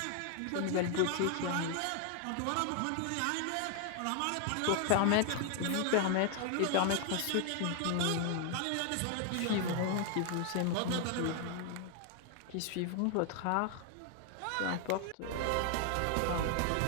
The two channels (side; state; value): both; different; correlation 0.00